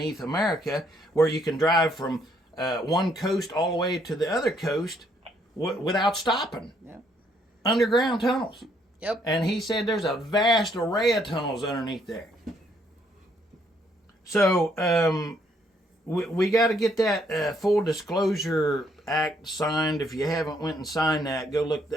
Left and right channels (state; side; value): normal; both; correlation 0.69